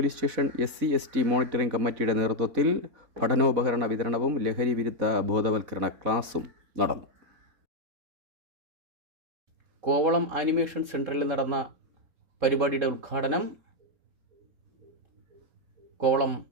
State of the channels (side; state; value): left; late; 4.0 ms